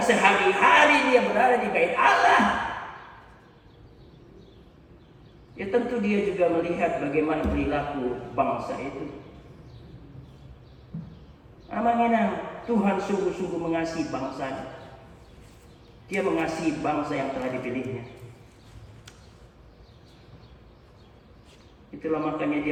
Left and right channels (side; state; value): both; identical; correlation 1.00